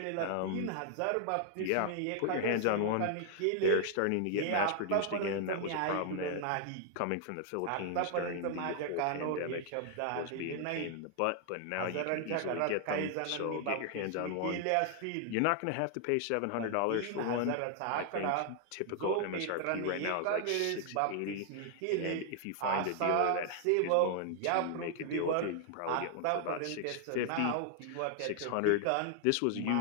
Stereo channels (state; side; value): different; both; correlation 0.00